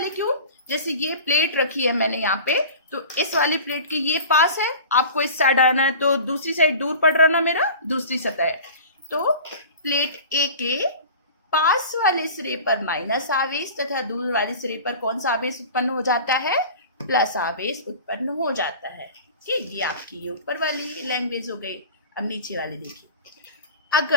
क्यों? जैसे ये प्लेट रखी है मैंने यहाँ पे, तो इस वाली प्लेट के ये पास है, आपको इस साइड आना है तो दूसरी साइड दूर पड़ रहा ना, मेरा दूसरी सतह है। तो प्लेट ए के पास वाले सिरे पर माइनस आवेश तथा दूर वाले सिरे पर कौन सा आवेश उत्पन्न हो जाता है? प्लस आवेश उत्पन्न हो जाता है। ठीक, ये आपकी ये ऊपर वाली लैंग्वेज हो गई। अब नीचे वाले देखिए,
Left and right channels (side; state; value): both; inverted; correlation -0.38